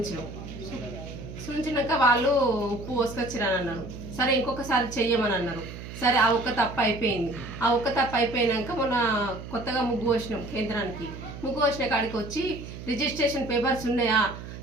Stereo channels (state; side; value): noise; right; hum, 11 dB below the sound